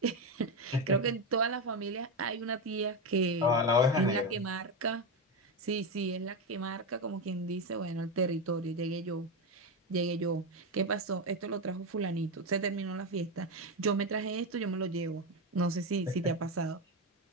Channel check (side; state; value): both; normal; correlation 0.12